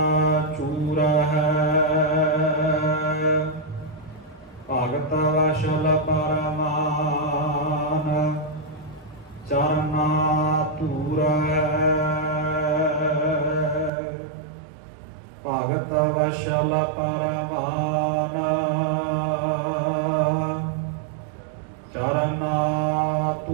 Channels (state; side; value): drops out; left; at 13.9 s